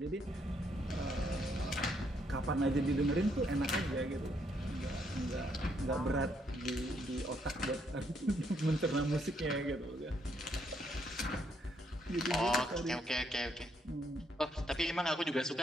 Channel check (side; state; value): both; normal; correlation 0.73